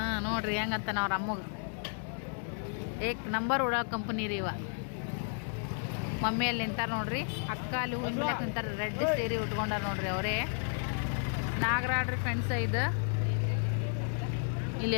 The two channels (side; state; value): right; silent; 56 dB below the other